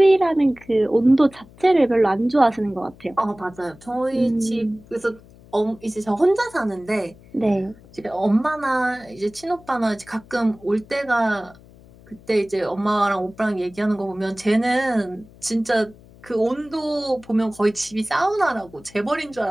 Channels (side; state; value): left; noise; hum, 24 dB below the sound